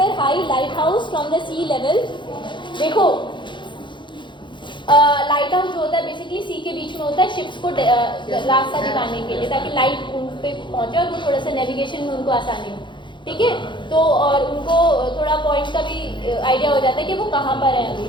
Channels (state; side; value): late; right; 0.23 ms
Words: high lighthouse from the sea level। देखो लाइट हाउस जो होता है बेसिकली सी के बीच में होता है, शिप्स को रास्ता दिखाने के लिए, ताकि लाइट उन पे पहुंचे और वो थोड़ा सा नेविगेशन में उनको आसानी हो। ठीक है, तो और उनको थोड़ा पॉइंट का भी आइडिया हो जाता है कि वो कहाँ पर है अभी,